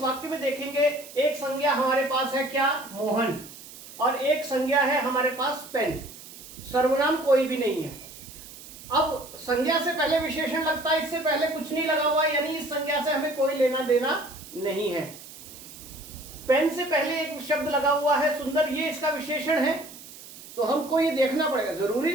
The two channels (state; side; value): noise; right; hiss, 16 dB below the sound